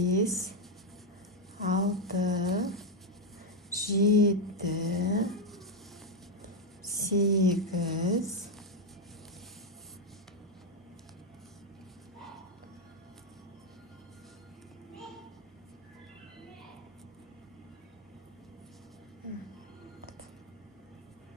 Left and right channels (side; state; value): both; normal; correlation 0.04